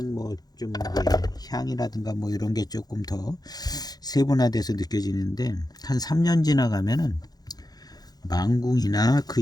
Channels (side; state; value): right; late; 0.19 ms